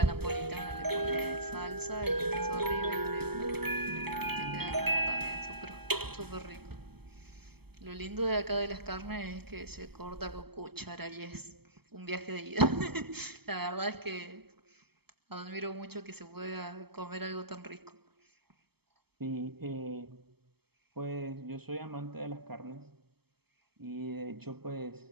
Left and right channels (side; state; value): left; late; 0.97 ms